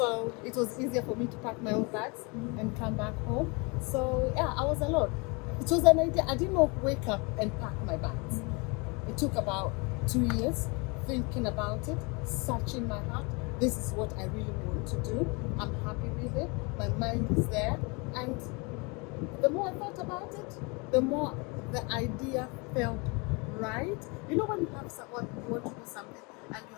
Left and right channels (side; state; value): right; quieter; 29.9 dB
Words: it was easier for me to pack my own bags and come back home. So yeah, I was alone. It was an idea. I did not wake up and pack my bags. It took about 2 years thinking about it, searching my heart. This is what I really want to do. I'm happy with it. My mind is there. And the more I thought about it, the more the idea felt right. You know when you have someone, you want to do something and you